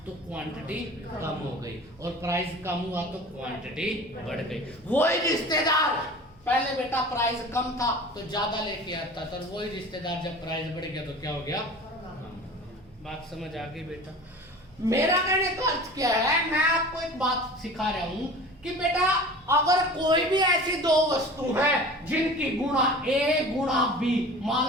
तो क्वांटिटी कम हो गई, और प्राइस कम हुआ तो क्वांटिटी बढ़ गई। वही रिश्तेदार पहले बेटा प्राइस कम था तो ज्यादा लेके आता था, और वही रिश्तेदार जब प्राइस बढ़ गया तो क्या हो गया? बात समझ आ गई बेटा? मेरा कहने का अर्थ क्या है, मैं आपको एक बात सिखा रहा हूं कि बेटा अगर कोई भी ऐसी 2 वस्तु है जिनकी गुणा A गुणा B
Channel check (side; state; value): right; noise; hum, 29 dB below the sound